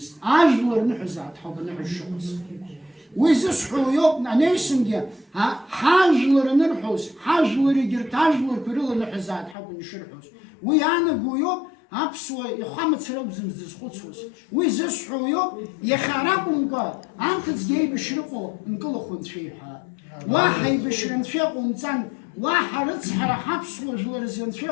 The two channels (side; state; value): right; drops out; at 9.6 s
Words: أجلر نحز عتحب نحج شخص ويزصحو يوم نيسنجي حاجلر نرحوز حاجلر يجرت حاجلر كريل نحز عتحب نشرحوز ويانا قويوب أبسوا يخامت سراب زمزز خصوص ويزصحو يوم يخربون قا أنت تجي بشرقو نقول خد فيها واحد بشرن فيقو متان واحد رتسحر حبسوا جلرزن